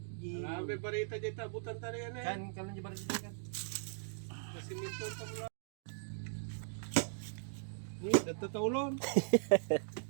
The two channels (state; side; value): silent; left; digital silence